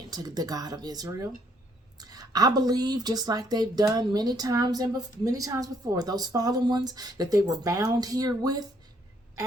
to the God of Israel. I believe, just like they've done many times before, those fallen ones that they were bound here with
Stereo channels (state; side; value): normal; both; correlation 0.68